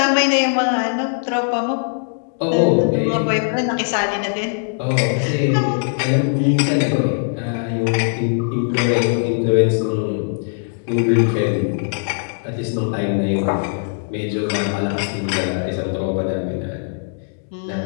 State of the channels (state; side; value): silent; right; digital silence